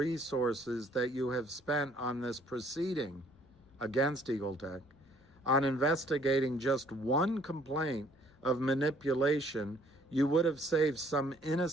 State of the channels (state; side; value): noise; left; rumble, 29 dB below the sound